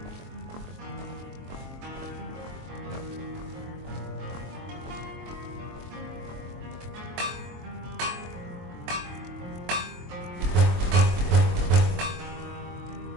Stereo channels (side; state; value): left; late; 23 ms